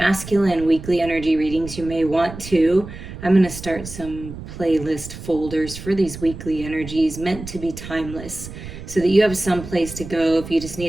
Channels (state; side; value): noise; right; rumble, 12 dB below the sound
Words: weekly energy readings, you may want to. I'm going to start some playlist folders for these weekly energies meant to be timeless so that you have some place to go if you just